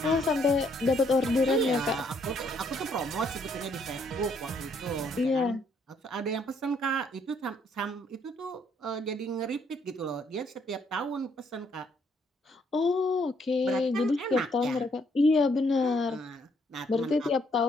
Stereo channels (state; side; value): normal; both; correlation 0.69